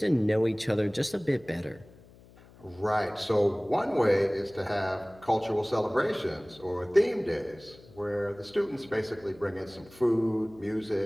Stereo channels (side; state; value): left; noise; hum, 24 dB below the sound